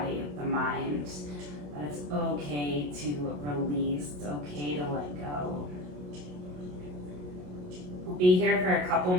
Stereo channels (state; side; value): late; left; 27 ms